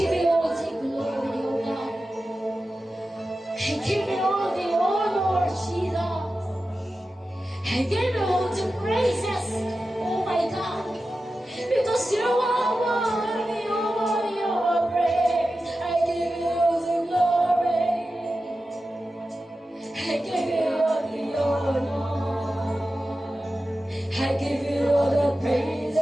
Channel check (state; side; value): normal; both; correlation 0.93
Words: you all the glory, O God. I give you all the honor, Jesus. I give you all the praises, oh my God. Because you are worthy, of our praise. I give you the glory. I give you all the honor. I give you all the praises.